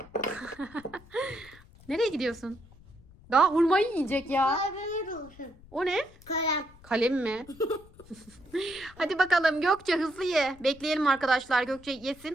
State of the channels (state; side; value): noise; left; rumble, 23 dB below the sound